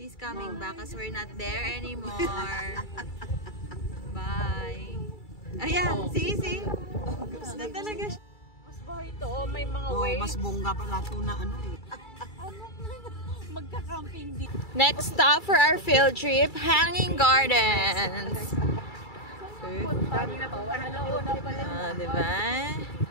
coming back because we're not there anymore. Bye. Ayan, see? Gusto na talaga siya. Mas ba ito? May mga waves. Mas bongga pala ito na Magka-camping dito. Next stop for our field trip, Hanging Gardens. Diba?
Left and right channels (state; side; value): late; right; 2.3 ms